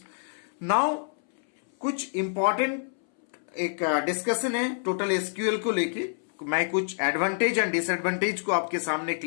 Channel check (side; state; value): right; silent; 60 dB below the other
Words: Now कुछ इंपॉर्टेंट एक डिस्कशन है टोटल एसक्यूएल को लेके. मैं कुछ एडवांटेज एंड डिसएडवांटेज को आपके सामने